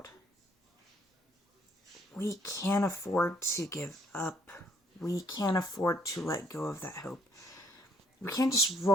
we can't afford to give up. We can't afford to let go of that hope. We can't just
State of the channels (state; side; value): normal; both; correlation 0.66